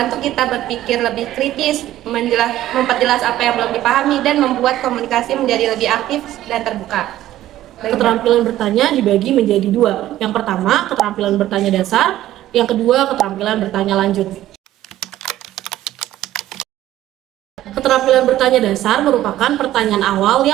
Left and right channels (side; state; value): left; quieter; 13.8 dB